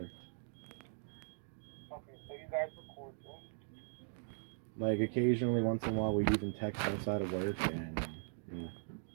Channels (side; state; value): left; silent; digital silence